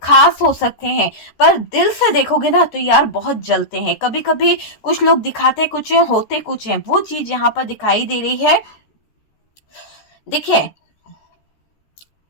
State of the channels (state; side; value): late; right; 13 ms